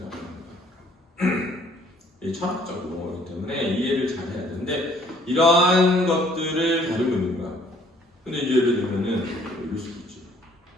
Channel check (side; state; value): both; normal; correlation 0.60